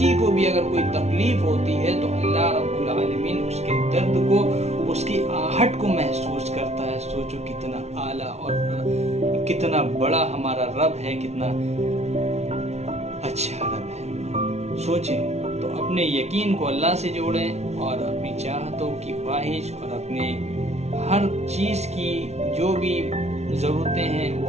کو بھی اگر کوئی تکلیف ہوتی ہے تو اللہ رب العالمین اس کے درد کو، اس کی آہٹ کو محسوس کرتا ہے۔ سوچو کتنا اعلیٰ اور کتنا بڑا ہمارا رب ہے، کتنا اچھا رب ہے۔ سوچیں تو اپنے یقین کو اللہ سے جوڑیں اور اپنی چاہتوں کی خواہش اور اپنے ہر چیز کی جو بھی ضرورتیں ہیں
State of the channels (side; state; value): left; late; 0.31 ms